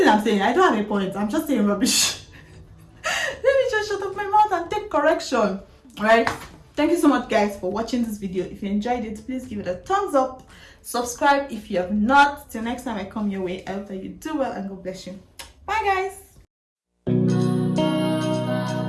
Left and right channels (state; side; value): identical; both; correlation 1.00